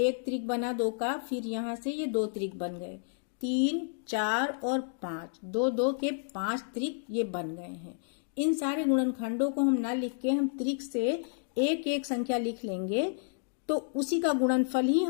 त्रिक बना 2 का, फिर यहाँ से ये 2 त्रिक बन गए, 3, 4 और 5, 2 2 के 5 त्रिक ये बन गए हैं। इन सारे गुणनखंडों को हम ना लिख के हम त्रिक से एक एक संख्या लिख लेंगे तो उसी का गुणनफल ही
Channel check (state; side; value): silent; right; digital silence